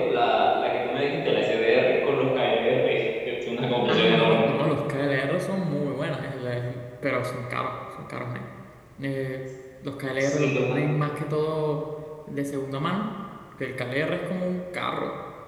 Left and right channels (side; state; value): both; identical; correlation 1.00